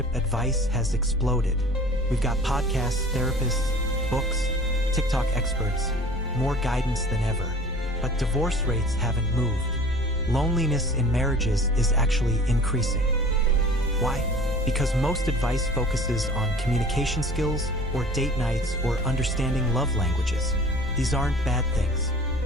advice has exploded. We've got podcasts, therapists, books, TikTok experts, more guidance than ever. But divorce rates haven't moved. Loneliness in marriages is actually increasing. Why? Because most advice focuses on communication skills or date nights or understanding love languages. These aren't bad things,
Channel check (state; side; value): normal; both; correlation 0.45